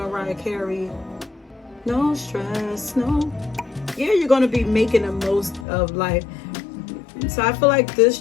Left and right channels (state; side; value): drops out; right; at 5.7 s